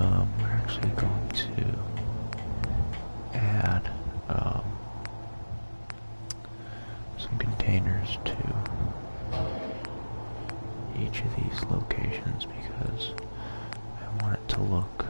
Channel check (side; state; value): both; inverted; correlation -1.00